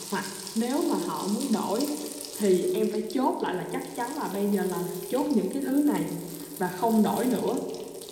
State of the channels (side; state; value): both; identical; correlation 1.00